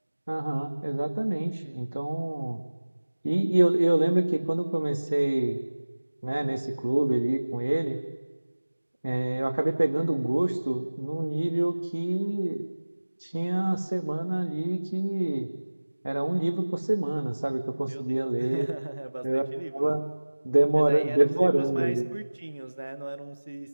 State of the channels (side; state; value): both; inverted; correlation -1.00